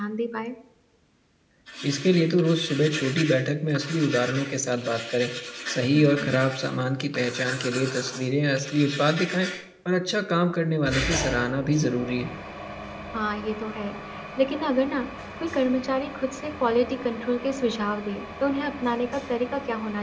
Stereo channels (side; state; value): both; identical; correlation 1.00